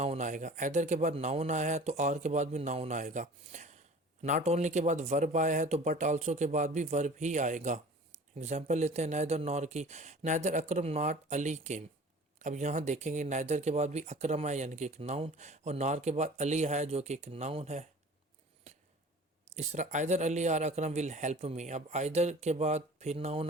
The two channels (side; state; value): both; normal; correlation 0.44